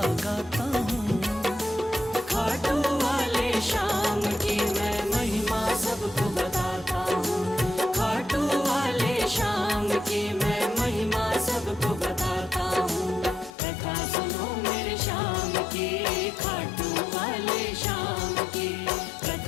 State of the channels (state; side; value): drops out; right; at 13.6 s